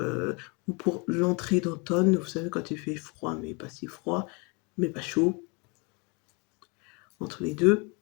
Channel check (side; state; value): right; quieter; 31.1 dB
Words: ou pour l'entrée d'automne, vous savez, quand il fait froid, mais pas si froid, mais pas chaud. Entre les deux,